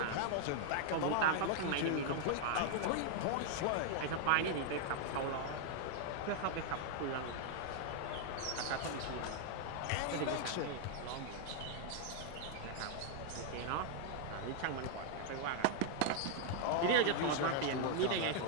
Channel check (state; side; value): different; both; correlation 0.00